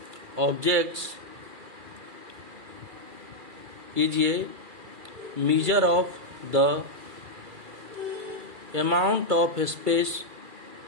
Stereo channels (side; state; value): left; late; 2.3 ms